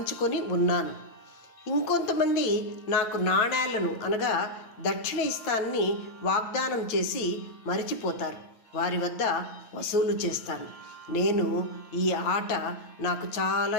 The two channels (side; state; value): right; late; 8.7 ms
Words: ఉన్నాను. ఇంకొంతమంది నాకు నాణేలను అనగా దక్షిణ ఇస్తానని వాగ్దానం చేసి మరిచిపోతారు, వారి వద్ద వసూలు చేస్తాను. నేను ఈ ఆట నాకు